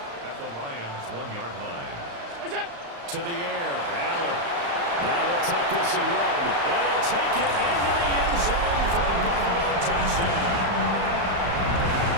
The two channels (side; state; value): left; late; 35 ms